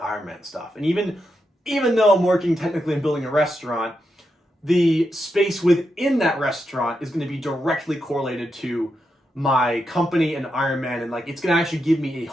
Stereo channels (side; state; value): both; normal; correlation 0.85